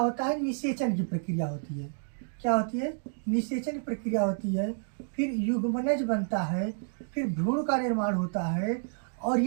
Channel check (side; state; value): left; silent; digital silence